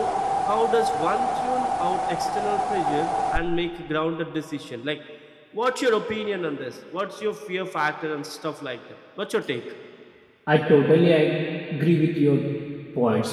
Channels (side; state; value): both; identical; correlation 1.00